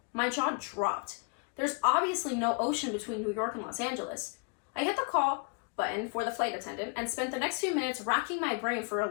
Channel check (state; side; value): quieter; right; 34.8 dB